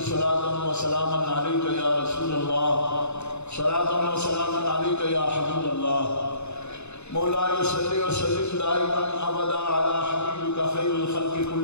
صلاة و سلاما علیک یا رسول اللہ صلاة و سلاما علیک یا حبیب اللہ مولاي صلی وسلم دائما ابدا علی حبیبک خیر الخلق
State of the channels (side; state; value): right; late; 0.81 ms